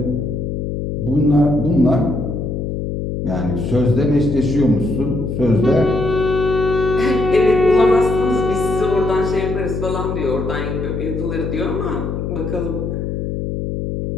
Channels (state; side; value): noise; left; hum, 3 dB below the sound